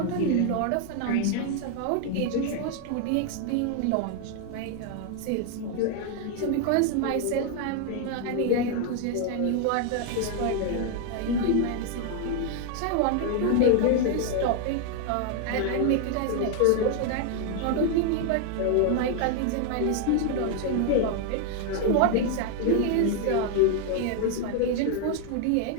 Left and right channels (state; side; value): different; both; correlation 0.01